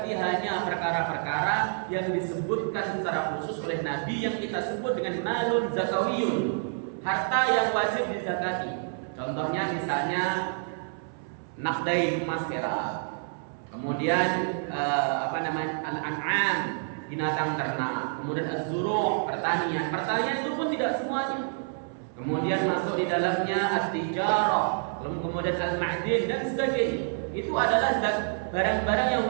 hanya perkara-perkara yang disebutkan secara khusus oleh Nabi yang kita sebut dengan malun zakawiyun, harta yang wajib dizakati. Contohnya misalnya nakdai emas perak, kemudian al-an'am binatang ternak, kemudian az-zuru' pertanian itu pun tidak semuanya. Kemudian masuk di dalamnya at-tijarah, kemudian al-ma'din dan sebagainya. Itu adalah barang-barang yang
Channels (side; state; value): left; silent; 59 dB below the other